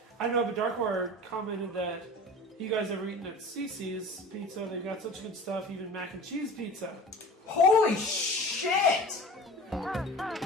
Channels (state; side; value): normal; both; correlation 0.38